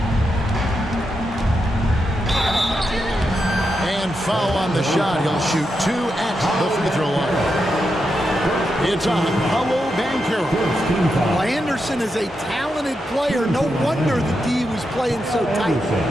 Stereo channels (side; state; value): both; normal; correlation 0.85